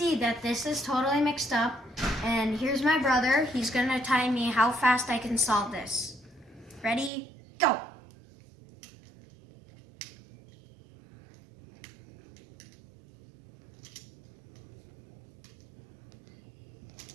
that this is totally mixed up. And here's my brother. He's gonna tell me how fast I can solve this. Ready? Go!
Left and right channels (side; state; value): left; drops out; at 7.1 s